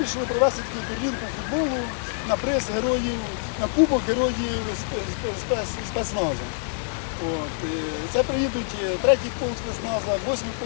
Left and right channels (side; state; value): right; silent; 61 dB below the other